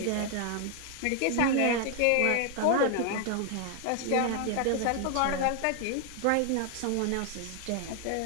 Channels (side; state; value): both; different; correlation 0.00